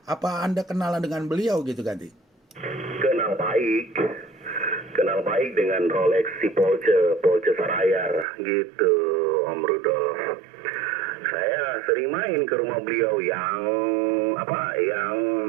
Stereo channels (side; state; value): left; drops out; at 8.2 s